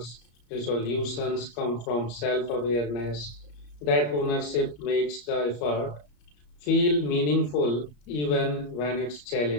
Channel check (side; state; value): right; late; 34 ms